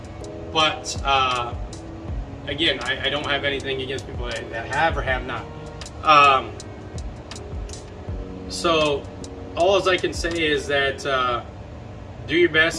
But again, I don't have anything against people that have or have not. So all I can say is that do your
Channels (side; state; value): both; identical; correlation 1.00